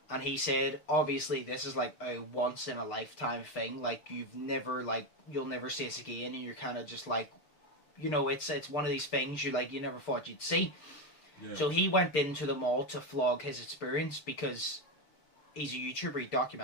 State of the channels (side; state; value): right; late; 6.7 ms